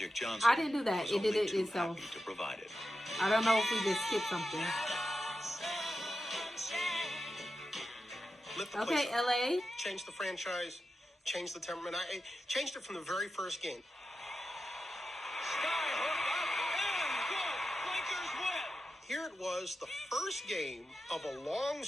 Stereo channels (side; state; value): both; normal; correlation 0.91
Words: Johnson I didn't do that. was It did only it too itself. happy to provide it. I don't know if we just skipped something. Lift the Okay, place up. LA. Change the franchise, change the temperament. I changed it from the very first game. Here it was, the first game of a long